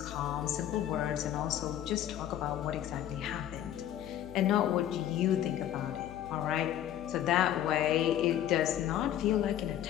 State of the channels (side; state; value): right; quieter; 11.5 dB